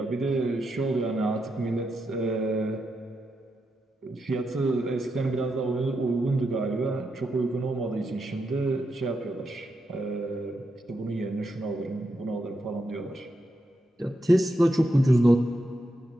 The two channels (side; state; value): both; normal; correlation 0.85